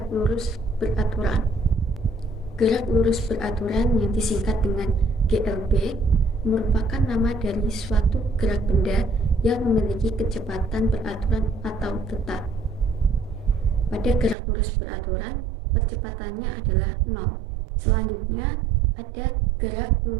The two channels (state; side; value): drops out; left; at 14.4 s